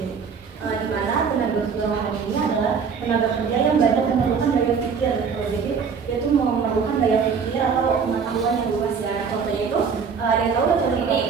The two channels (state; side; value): quieter; left; 6.0 dB